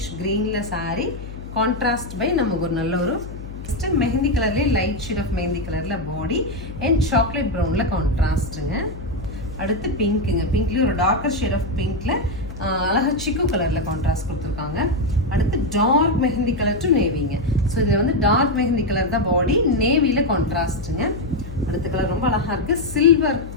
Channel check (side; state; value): left; noise; hum, 12 dB below the sound